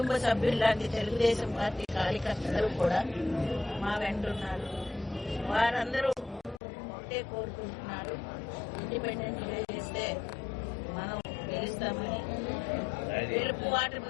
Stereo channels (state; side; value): drops out; right; at 6.6 s